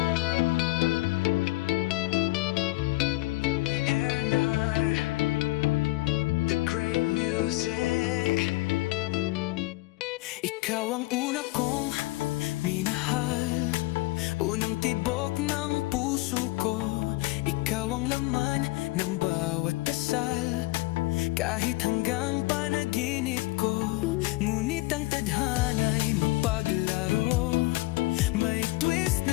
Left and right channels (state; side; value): quieter; right; 21.0 dB